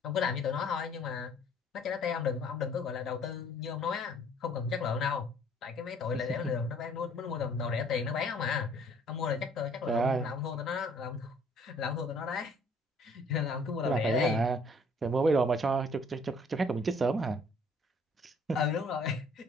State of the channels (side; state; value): both; normal; correlation 0.58